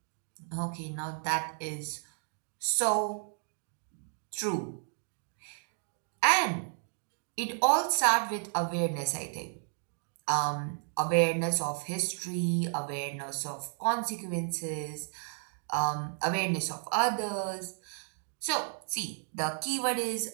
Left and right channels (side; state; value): left; silent; 56 dB below the other